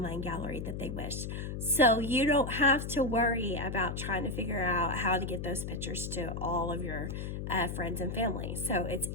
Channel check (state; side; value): noise; left; hum, 5 dB below the sound